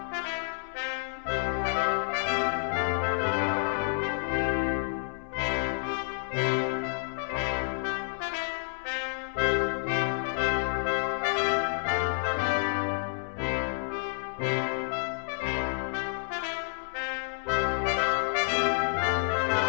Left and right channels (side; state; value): right; silent; 58 dB below the other